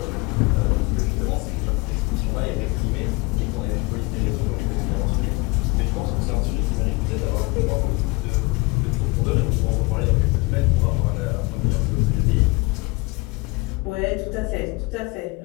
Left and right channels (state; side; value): quieter; right; 24.9 dB